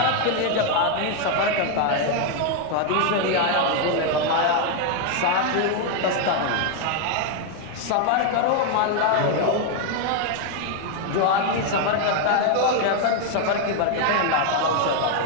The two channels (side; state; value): both; different; correlation 0.01